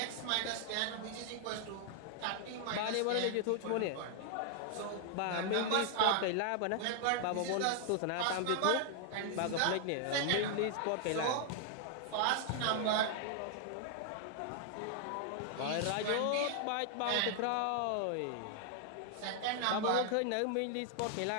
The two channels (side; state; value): both; different; correlation 0.00